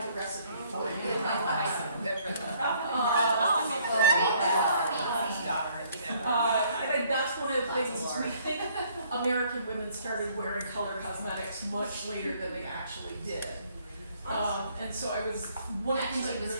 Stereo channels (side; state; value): both; inverted; correlation -0.63